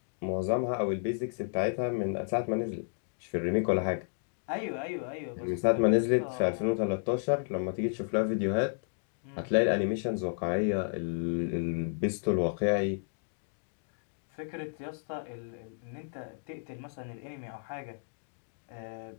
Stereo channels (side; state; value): right; silent; digital silence